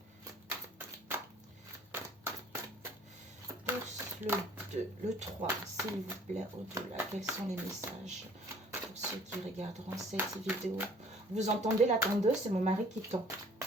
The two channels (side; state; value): both; normal; correlation 0.54